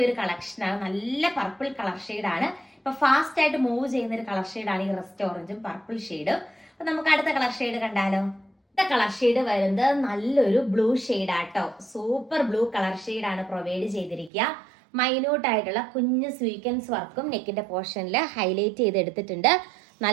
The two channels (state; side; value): drops out; left; at 14.3 s